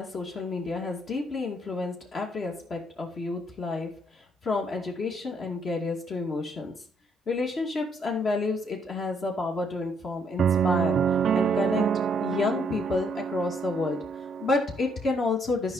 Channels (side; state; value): both; normal; correlation 0.70